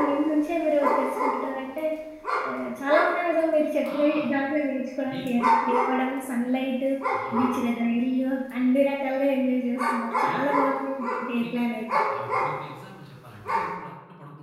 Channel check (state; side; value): identical; both; correlation 1.00